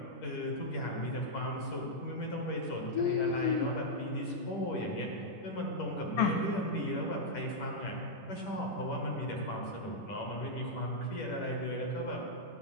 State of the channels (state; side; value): late; right; 10 ms